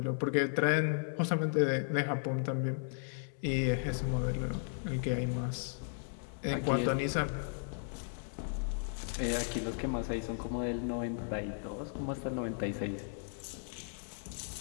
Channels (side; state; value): right; silent; 54 dB below the other